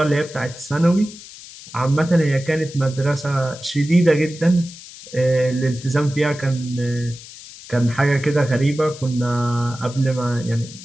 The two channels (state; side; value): noise; left; hiss, 17 dB below the sound